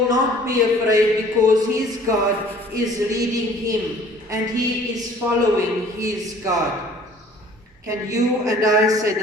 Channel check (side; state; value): both; normal; correlation 0.52